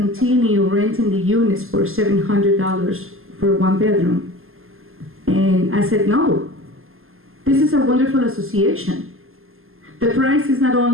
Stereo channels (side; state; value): left; late; 0.61 ms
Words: renting the units for $700 for 1 bedroom, and I said no. This is a wonderful association. The price is not